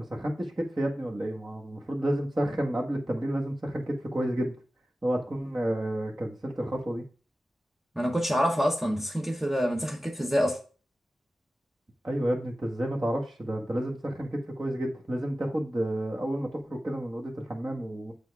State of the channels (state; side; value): normal; both; correlation 0.95